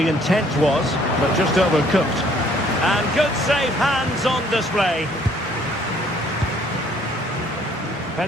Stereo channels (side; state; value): both; normal; correlation 0.61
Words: intent was, but just overcooked. And good safe hands on display.